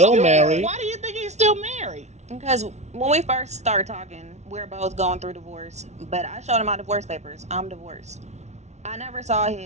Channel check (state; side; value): late; left; 0.32 ms